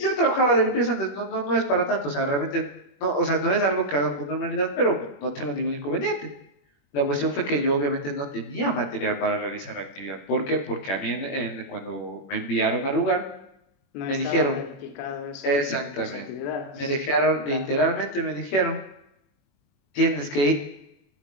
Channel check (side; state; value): right; late; 21 ms